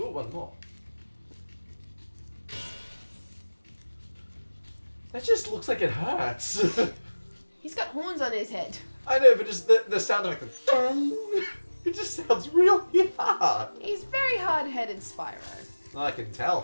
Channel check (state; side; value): inverted; both; correlation -1.00